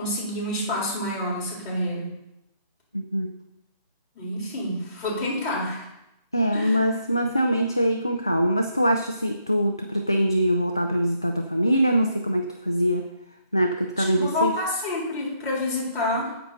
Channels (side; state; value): both; inverted; correlation -0.73